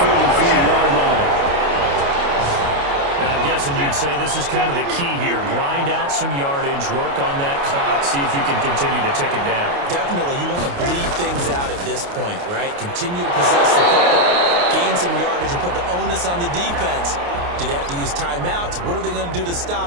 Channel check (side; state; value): left; late; 29 ms